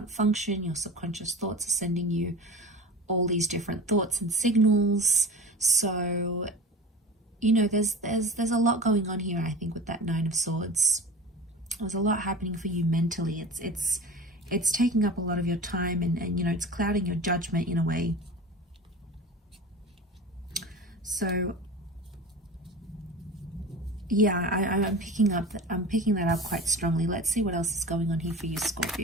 function. Your subconscious thoughts are sending you all these different thoughts and signals. So, you know, there's a lot going on here. I think with that Nine of Swords, there's a lot happening for you mentally. It's taking up a lot of your time, and you know, it's clouding your judgment in a way. So yeah, I'm picking that up quite strongly. Let's see what else is going on here for you,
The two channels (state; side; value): normal; both; correlation 0.34